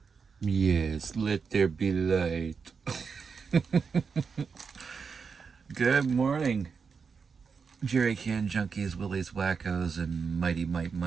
Yes, let there be light. Good morning, Jerry Can Junkies, Willies Wackos, and Mighty Mite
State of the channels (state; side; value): quieter; left; 5.6 dB